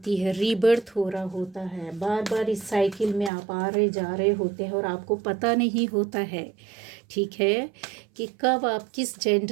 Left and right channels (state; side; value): drops out; left; at 3.3 s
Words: है, रीबर्थ हो रहा होता है। बार बार इस साइकिल में आप आ रहे जा रहे होते हैं और आपको पता नहीं होता है, ठीक है, कि कब आप किस